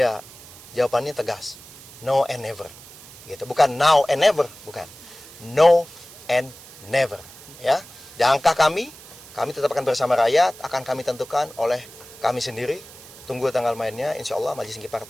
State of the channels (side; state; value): right; noise; hiss, 19 dB below the sound